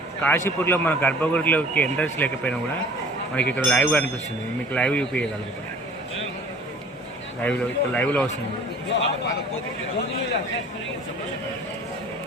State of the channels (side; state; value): both; normal; correlation 0.48